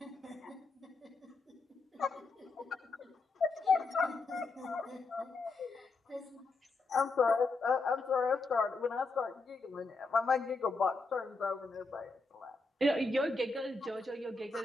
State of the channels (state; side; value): quieter; right; 3.7 dB